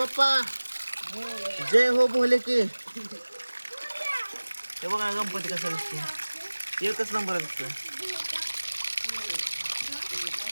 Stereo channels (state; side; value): inverted; both; correlation -1.00